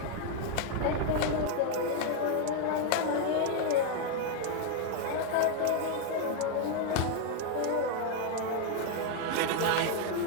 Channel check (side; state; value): both; different; correlation 0.00